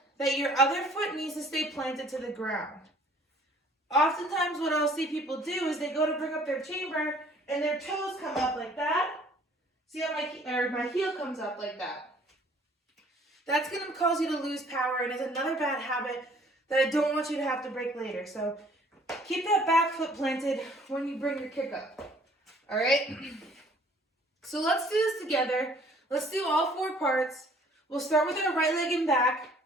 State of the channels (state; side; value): normal; both; correlation 0.56